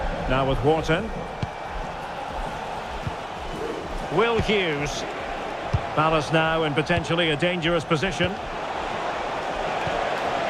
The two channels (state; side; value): identical; both; correlation 1.00